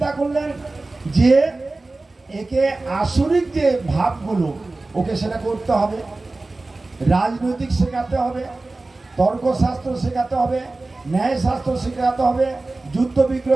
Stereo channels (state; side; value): quieter; left; 3.2 dB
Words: করলেন, যে একে আসরিক যে ভাবগুলো ওকে সেটা করতে হবে, রাজনৈতিক শেখাতে হবে, তর্কশাস্ত্র শেখাতে হবে, ন্যায়শাস্ত্র শেখাতে হবে, যুদ্ধ